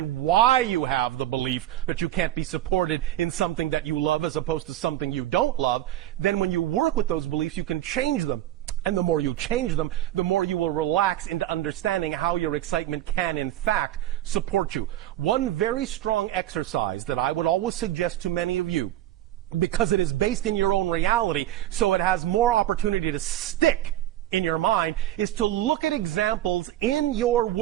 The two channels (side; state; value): left; quieter; 13.5 dB